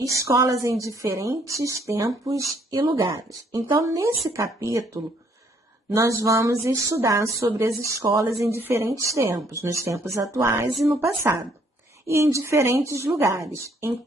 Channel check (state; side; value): normal; both; correlation 0.66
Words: em diferentes tempos e lugares. Então, nesse capítulo, nós vamos estudar sobre as escolas em diferentes tempos, nos tempos atuais e no passado, e em diferentes lugares, em